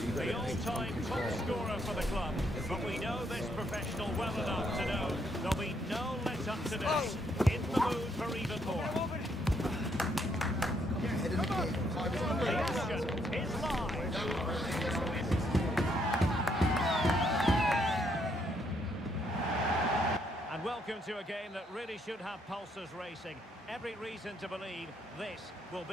the all-time top scorer for the club. But we know this professional well enough to know there'll be no let-up today. In the mood for even more. The action is live. And welcome to a game that really should have pulses racing. Every reason to believe this will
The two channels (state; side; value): normal; both; correlation 0.73